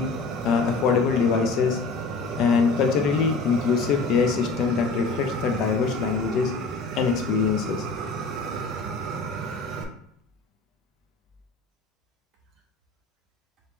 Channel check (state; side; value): quieter; right; 3.8 dB